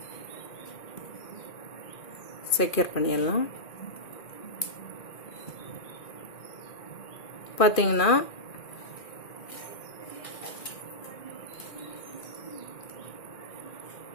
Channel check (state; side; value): late; right; 2.4 ms